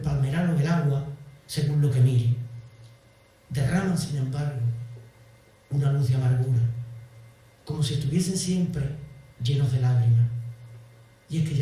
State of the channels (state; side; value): identical; both; correlation 1.00